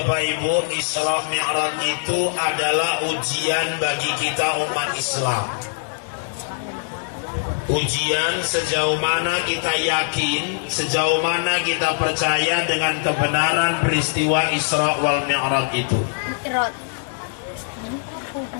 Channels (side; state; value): right; silent; digital silence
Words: Ibu, Isra Mi'raj itu adalah ujian bagi kita umat Islam. Ujian sejauh mana kita yakin, sejauh mana kita percaya dengan kebenaran peristiwa Isra wal Mi'raj itu.